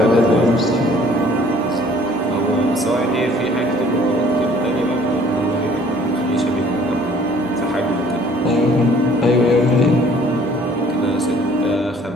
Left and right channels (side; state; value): both; normal; correlation 0.56